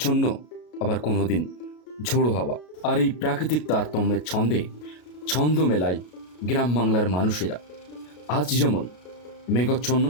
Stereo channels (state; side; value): late; right; 33 ms